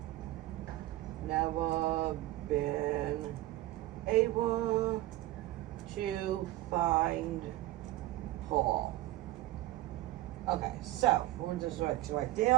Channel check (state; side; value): quieter; left; 16.4 dB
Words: never been able to find Paul. Okay, so we'll just right